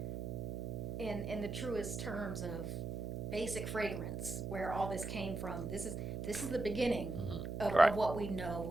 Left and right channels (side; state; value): right; noise; hum, 4 dB below the sound